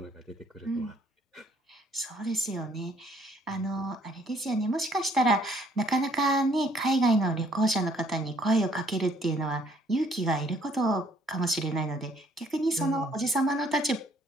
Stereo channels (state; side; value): normal; both; correlation 0.64